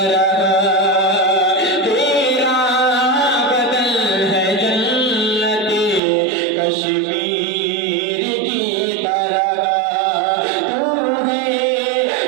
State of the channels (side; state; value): left; drops out; at 6.0 s